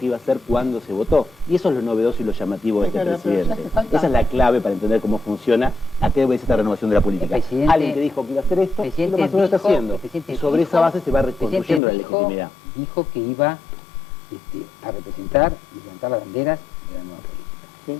iba a hacer cuando se votó. Y eso es lo novedoso y lo llamativo de este presidente. Esa es la clave para entender cómo funciona, a qué obedece esta renovación de la política. Alguien que dijo que iba a hacer esto, y lo más o menos está haciendo. Y sobre esa base se va reconstruyendo la legitimidad. Dijo que iba a representar y levantar las banderas de la nueva política.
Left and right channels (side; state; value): right; drops out; at 11.8 s